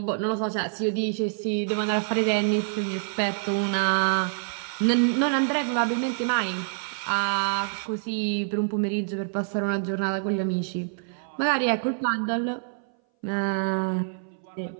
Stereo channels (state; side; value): silent; left; 59 dB below the other